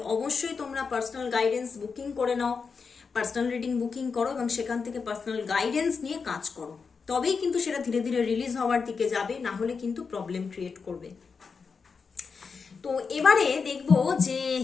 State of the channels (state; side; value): quieter; right; 5.3 dB